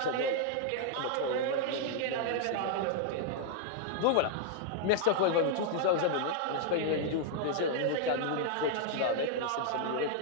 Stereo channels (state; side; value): different; both; correlation 0.00